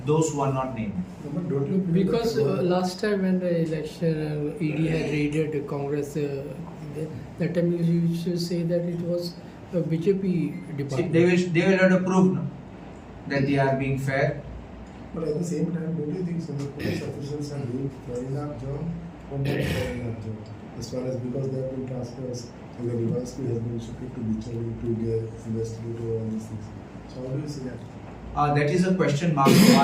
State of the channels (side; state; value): both; identical; correlation 1.00